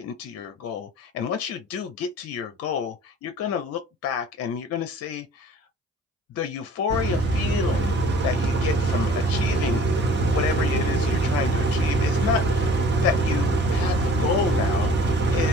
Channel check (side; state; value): both; normal; correlation 0.49